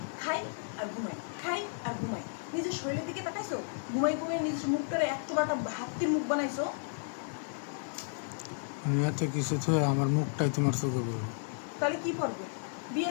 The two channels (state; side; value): silent; right; digital silence